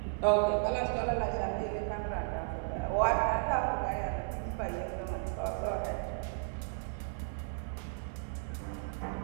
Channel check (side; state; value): left; silent; digital silence